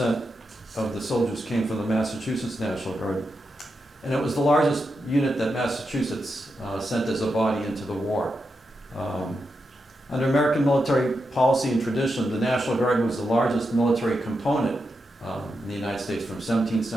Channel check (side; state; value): both; normal; correlation 0.86